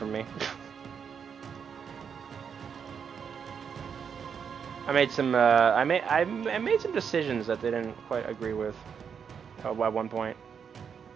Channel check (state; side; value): quieter; left; 7.0 dB